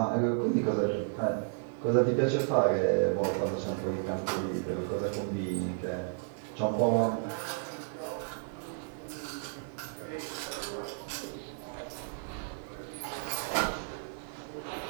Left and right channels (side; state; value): left; silent; 56 dB below the other